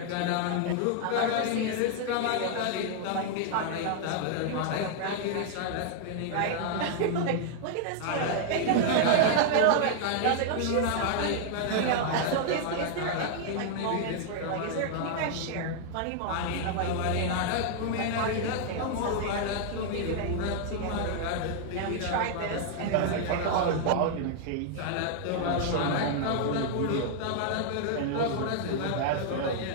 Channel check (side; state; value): both; different; correlation 0.00